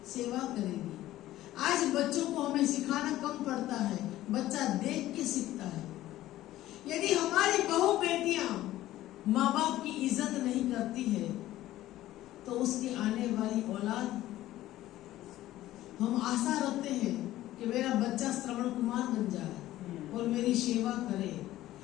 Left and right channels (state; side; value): quieter; right; 14.9 dB